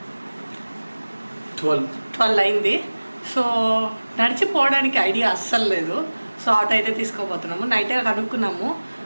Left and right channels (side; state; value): both; inverted; correlation -1.00